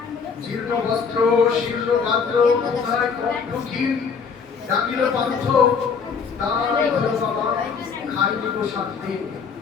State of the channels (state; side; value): quieter; right; 5.8 dB